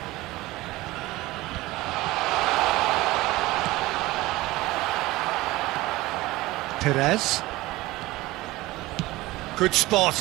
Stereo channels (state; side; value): quieter; left; 19.2 dB